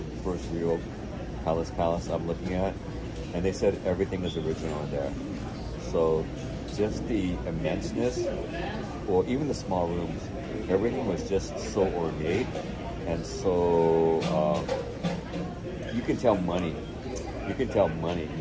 first real palace I'm looking at, and they said everything is original in there. So just the immenseness, or even the small rooms, everything was just so ornate, and so you can tell money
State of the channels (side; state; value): both; identical; correlation 1.00